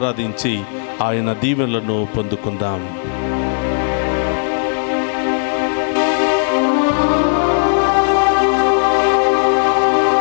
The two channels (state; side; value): silent; right; 59 dB below the other